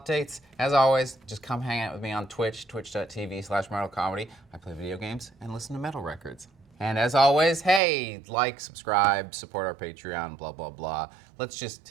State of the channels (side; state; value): left; drops out; at 7.8 s